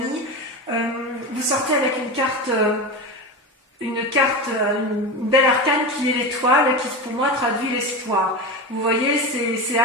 vous sortez avec une belle arcane qui est l'étoile, qui pour moi traduit l'espoir. Vous voyez, c'est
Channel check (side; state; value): both; normal; correlation 0.23